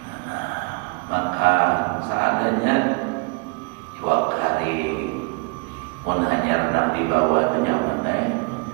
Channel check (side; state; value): left; quieter; 31.7 dB